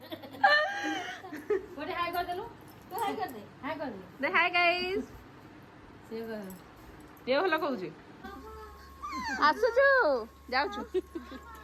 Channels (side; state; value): both; identical; correlation 1.00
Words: बोले हाय कर देलु तो हाय कर दे दे हाय गाइस से कर ये भल कहूँ आसुचु जाऊचु